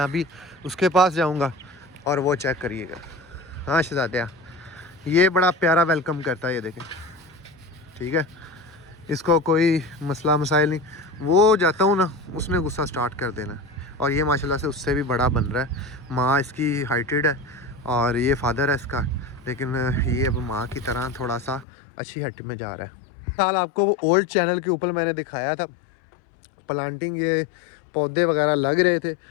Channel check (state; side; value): drops out; right; at 21.7 s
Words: अभी उसके पास जाऊंगा और वो चेक करिएगा। हाँ शहजादा, ये बड़ा प्यारा वेलकम करता है, ये देखें, ठीक है, इसको कोई मसला मसाइल नहीं। वो जाता हूँ ना, उसने गुस्सा स्टार्ट कर देना। और ये माशाल्लाह से उससे भी बड़ा बन रहा है। माँ इसकी हाइटेड है और ये फादर है इसका, लेकिन ये अब माँ की तरह थोड़ा सा अच्छी हट में जा रहा है। साल आपको वो ओल्ड चैनल के ऊपर मैंने दिखाया था प्लांटिंग, ये पौधे वगैरह लग रहे थे,